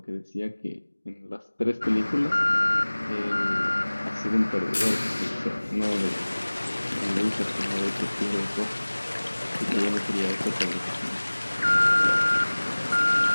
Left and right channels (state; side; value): inverted; both; correlation -1.00